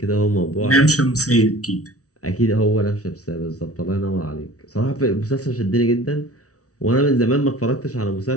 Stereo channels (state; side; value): late; right; 0.67 ms